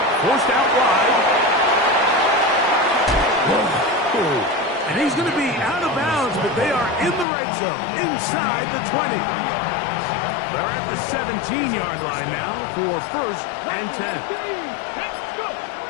Forced out wide. And he's going to be out of bounds, but they are in the red zone, inside the 20. They're at the 17-yard line now for 1st and 10.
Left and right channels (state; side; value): drops out; right; at 7.2 s